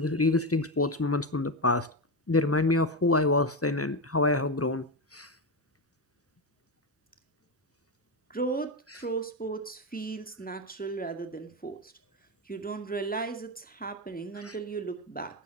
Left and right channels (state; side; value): normal; both; correlation 0.13